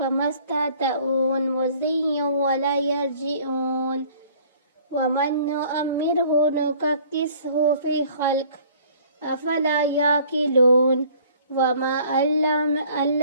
استطاعوا مضيا ولا يرجعون ومن نؤمره نككسه في خلق أفلا يعقلون وما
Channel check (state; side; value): inverted; both; correlation -0.54